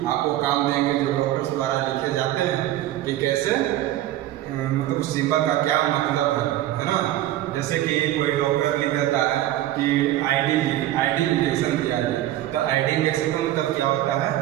आपको काम देंगे, जो डॉक्टर्स द्वारा लिखे जाते हैं कि कैसे मतलब सिंबल का क्या मतलब है ना। जैसे कि कोई डॉक्टर लिख देता है कि आईडी इंजेक्शन दिया जाए, तो आईडी इंजेक्शन का मतलब क्या होता है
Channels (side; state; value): left; quieter; 13.9 dB